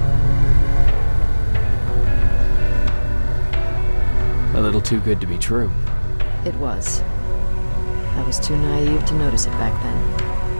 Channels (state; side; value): inverted; both; correlation -1.00